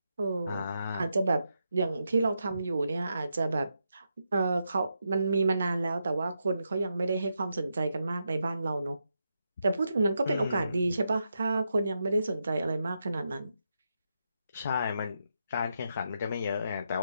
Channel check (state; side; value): inverted; both; correlation -0.84